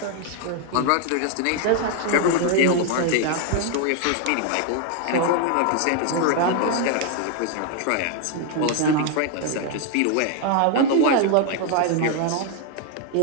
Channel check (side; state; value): both; different; correlation 0.00